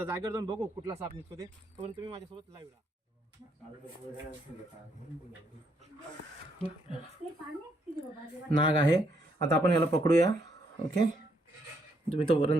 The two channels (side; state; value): both; normal; correlation 0.73